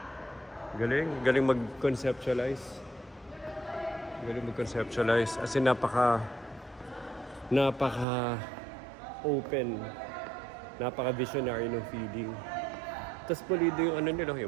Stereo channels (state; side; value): drops out; left; at 8.1 s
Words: Galing. Galing mag-conceptualize. As in, napaka open. Napaka-visionary ng feeling. Tapos pulido yung nila,